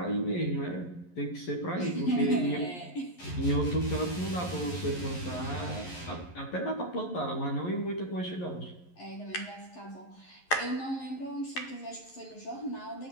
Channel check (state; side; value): late; right; 11 ms